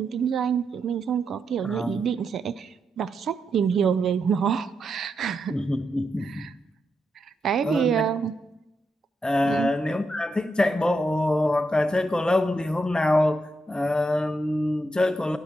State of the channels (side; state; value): both; normal; correlation 0.83